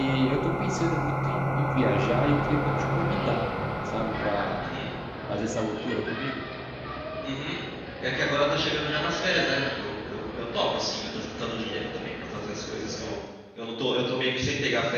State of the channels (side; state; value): both; identical; correlation 1.00